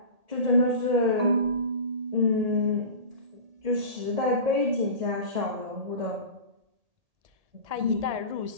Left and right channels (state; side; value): late; left; 1.8 ms